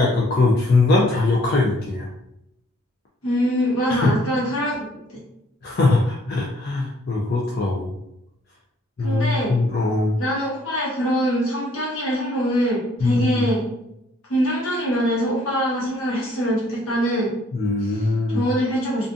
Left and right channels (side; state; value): both; normal; correlation 0.64